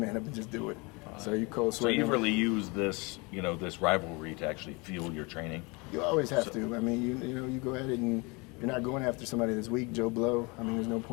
up and just do it. So you cold So sweating. you've really used this, you know, this rivalry to actually fuel your training. You always have to. I mean, you know, you go at it and you're not going after somebody that's weak, Joe Blow. I mean, there's no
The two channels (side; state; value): right; quieter; 27.9 dB